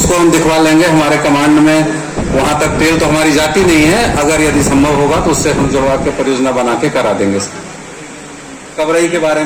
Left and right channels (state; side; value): identical; both; correlation 1.00